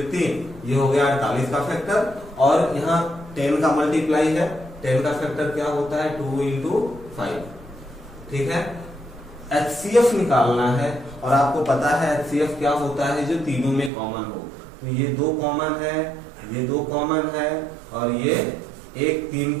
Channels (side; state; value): left; drops out; at 13.9 s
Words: 3, ये हो गया 48 का फैक्टर। और यहाँ 10 का मल्टीप्लाई है, 10 का फैक्टर क्या होता है? 2 इंटू 5। ठीक है। एचसीएफ निकालना है और आपको पता है एचसीएफ क्या होता है? जो तीनों में कॉमन हो। तो ये 2 कॉमन है, ये 2 कॉमन है और ये 1 3